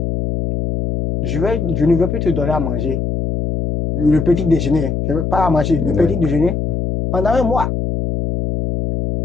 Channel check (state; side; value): noise; left; hum, 2 dB below the sound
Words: Je ne veux plus te donner à manger le petit déjeuner. Je ne veux pas à manger le petit déjeuner pendant 1 mois.